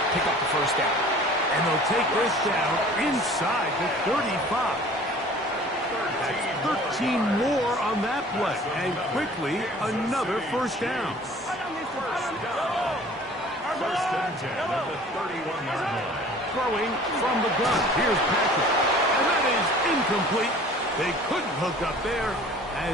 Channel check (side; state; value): both; normal; correlation 0.48